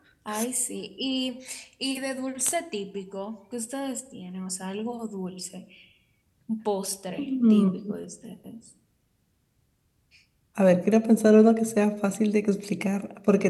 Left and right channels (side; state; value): both; identical; correlation 1.00